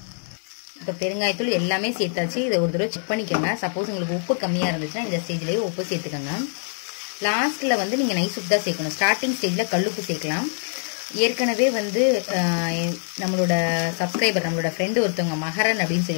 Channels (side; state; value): right; silent; digital silence